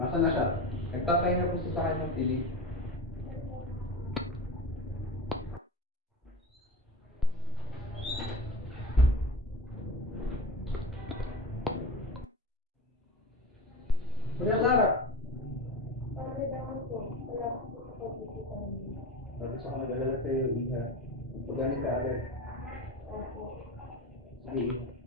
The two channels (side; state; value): both; normal; correlation 0.28